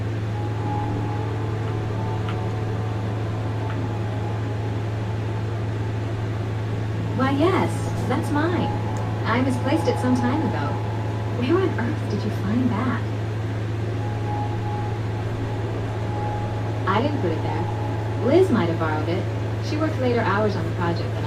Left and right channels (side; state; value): both; identical; correlation 1.00